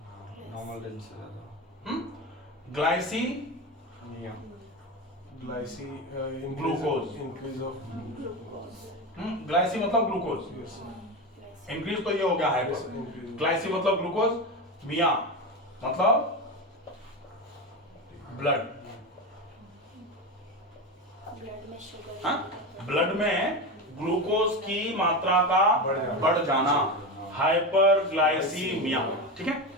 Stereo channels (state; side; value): normal; both; correlation 0.19